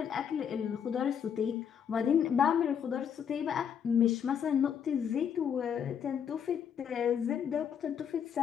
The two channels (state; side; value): quieter; right; 8.0 dB